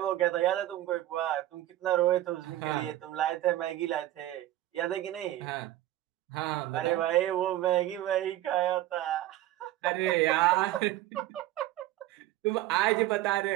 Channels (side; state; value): left; quieter; 14.8 dB